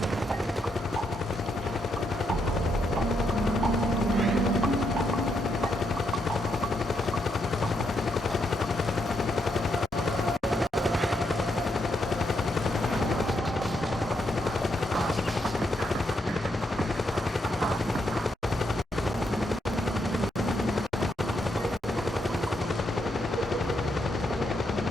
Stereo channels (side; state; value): both; normal; correlation 0.79